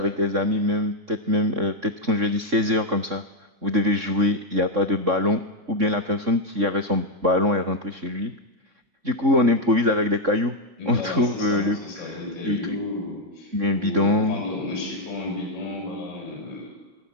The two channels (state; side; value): late; left; 3.6 ms